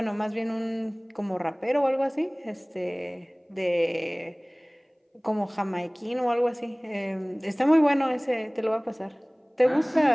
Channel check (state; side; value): identical; both; correlation 1.00